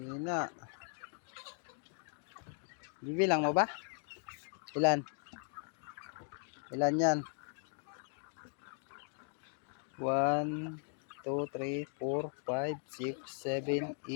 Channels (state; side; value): silent; right; 52 dB below the other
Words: Bibilang mo ba? Ilan? Ilan yan? 1, 2, 3, 4, 5, 6, 7,